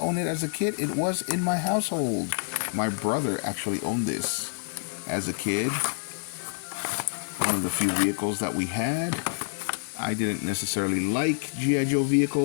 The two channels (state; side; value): silent; right; digital silence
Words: it as a kid, it was in my household. My brother actually owned this as a kid. One of the few vehicles that we had. I didn't necessarily like G.I. Joe